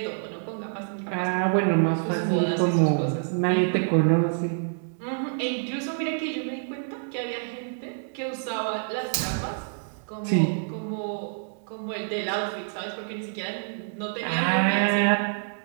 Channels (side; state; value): left; silent; digital silence